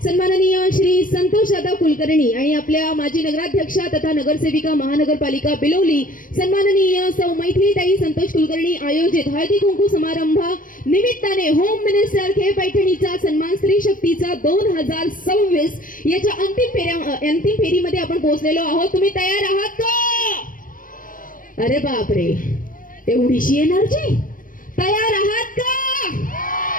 सन्माननीय श्री संतोष दादा कुलकर्णी आणि आपल्या माजी नगराध्यक्षा तथा नगरसेविका महानगरपालिका बिलोली सन्माननीय सौ मैथिलीताई संतोष कुलकर्णी आयोजित हळदी कुंकू समारंभा निमित्ताने होम मिनिस्टर खे पैठणीचा सन्मान स्त्री शक्तीचा 2026 याच्या अंतिम फेरीमध्ये आपण पोहोचलेलो आहोत. तुम्ही तयार आहात का? अरे बापरे, एवढीशी एनर्जी! तयार आहात का?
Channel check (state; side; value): late; right; 0.40 ms